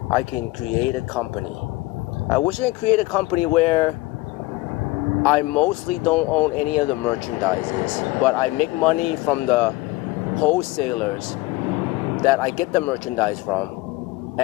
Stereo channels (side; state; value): right; quieter; 20.4 dB